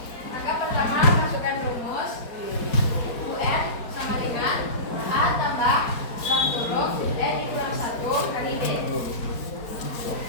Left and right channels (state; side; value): late; right; 4.4 ms